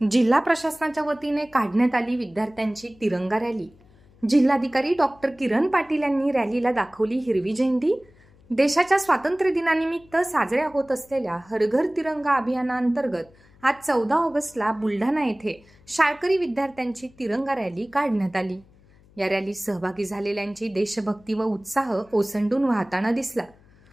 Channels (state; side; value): noise; left; hum, 28 dB below the sound